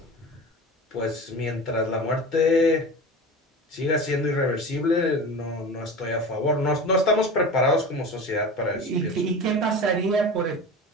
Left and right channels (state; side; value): normal; both; correlation 0.32